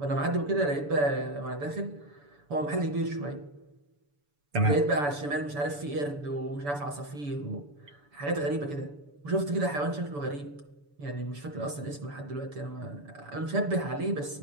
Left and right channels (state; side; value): late; left; 7.0 ms